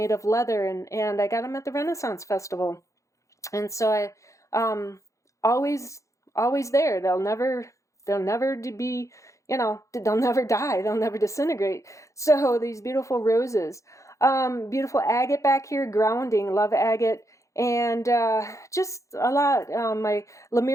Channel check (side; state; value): right; late; 0.15 ms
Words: of leather, and I got them at the Renaissance Festival. And so I always there. They'll never be, they'll never die. They'll never disintegrate. So these beautiful roses. Beautiful agate back here, grounding, love agate, and just a lot. My